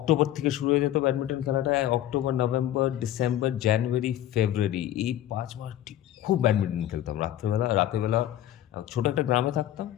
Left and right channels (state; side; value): quieter; right; 12.6 dB